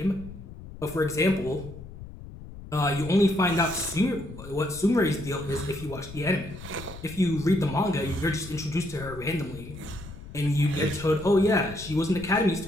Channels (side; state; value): left; noise; rumble, 14 dB below the sound